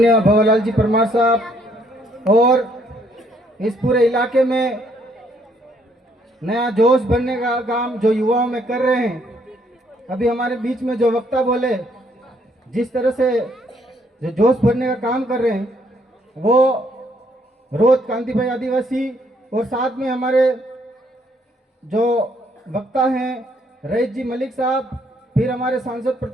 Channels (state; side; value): normal; both; correlation 0.68